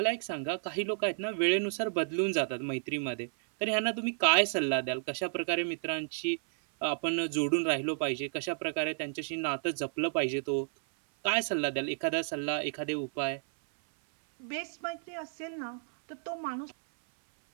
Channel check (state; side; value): silent; left; 57 dB below the other